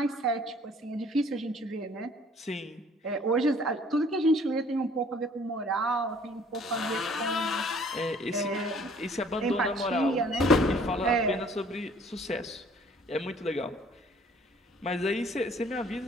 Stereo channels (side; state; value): both; normal; correlation 0.56